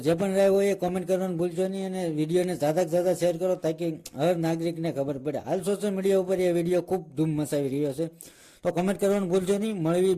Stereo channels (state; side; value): identical; both; correlation 1.00